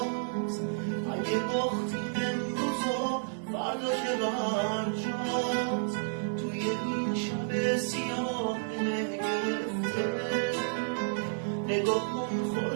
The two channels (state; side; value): silent; left; digital silence